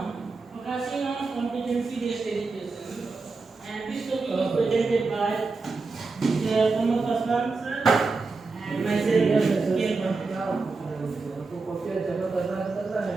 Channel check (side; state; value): left; quieter; 4.0 dB